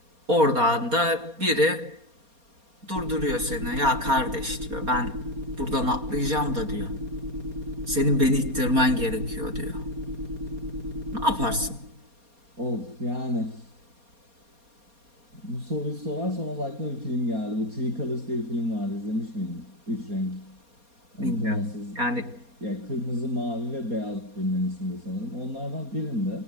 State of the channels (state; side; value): late; left; 4.2 ms